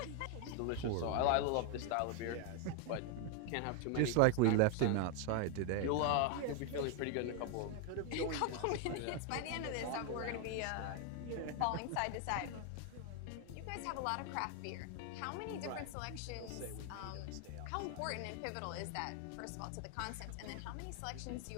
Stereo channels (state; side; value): different; both; correlation 0.01